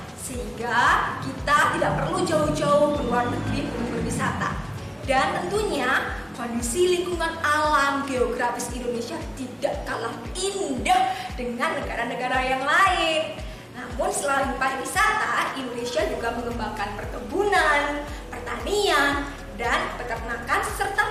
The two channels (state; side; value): identical; both; correlation 1.00